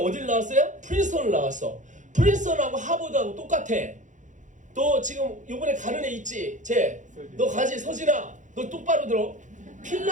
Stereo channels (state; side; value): late; left; 0.36 ms